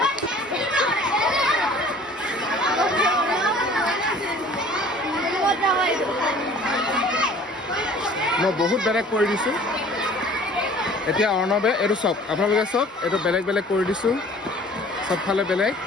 মই বহুত বেলেগ কৰি দিছোঁ। এতিয়া অৰ্ণৱে এইটো চাওক, আপোনালোকে চাওক, এইটো বেলেগ বেলেগ কৰি দিছোঁ, চবফালে বেলেগ।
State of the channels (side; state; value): both; normal; correlation 0.50